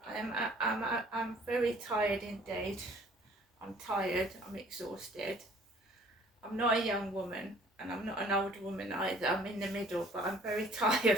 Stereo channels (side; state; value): both; normal; correlation 0.55